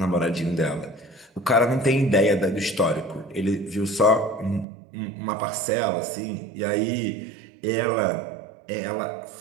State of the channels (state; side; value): drops out; left; at 4.7 s